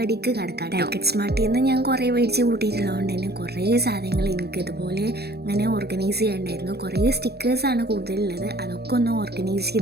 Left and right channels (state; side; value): late; left; 0.47 ms